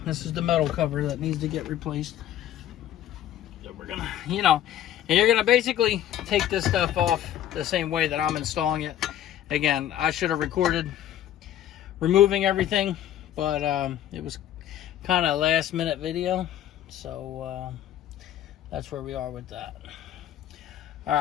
This is the metal cover that needs to get replaced. So we're gonna, you know, and you're gonna basically take this stuff off the same way that I'm installing it. Again, I should have recorded removing everything, but it was kind of a last minute video, so that's where we are with that. All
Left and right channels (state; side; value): quieter; right; 11.5 dB